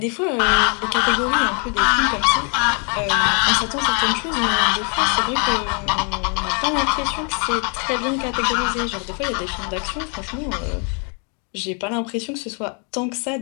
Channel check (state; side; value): quieter; right; 37.9 dB